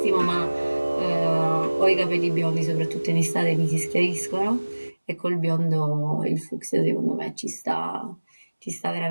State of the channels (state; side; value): inverted; both; correlation -1.00